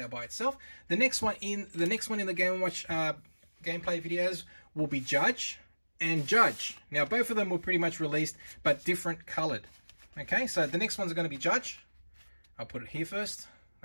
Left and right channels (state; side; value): inverted; both; correlation -1.00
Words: by itself. The next one in the Game & Watch gameplay videos will be Judge and Judge. Now, both of them were pretty much released, but different colored. Okay, so the next ones are going to be Judge. I'll put it here first.